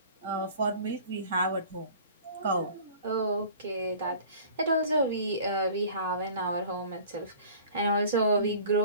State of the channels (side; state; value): both; inverted; correlation -0.45